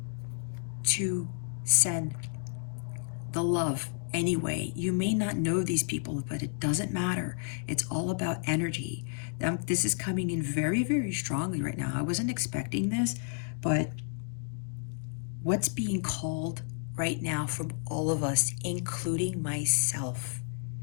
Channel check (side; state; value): right; silent; 57 dB below the other